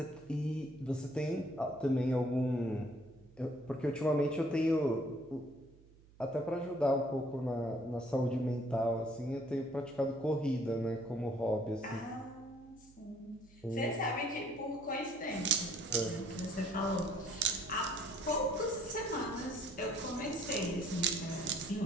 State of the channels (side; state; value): right; noise; hum, 25 dB below the sound